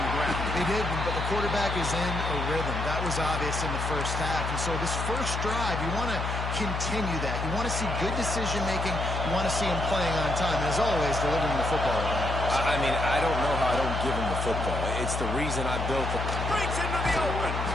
ground. They did, but the quarterback is in a rhythm. That was obvious in the first half. And so this first drive, you want to continue that. You want to see good decision-making. You want to see him playing on time. And as always, delivering the football. I mean, I don't know how I don't give him the football. It's the reason I built it. Breaks into the open.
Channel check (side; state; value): left; noise; hum, 3 dB below the sound